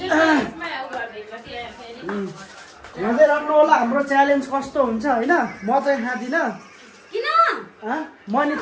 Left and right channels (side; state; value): both; identical; correlation 1.00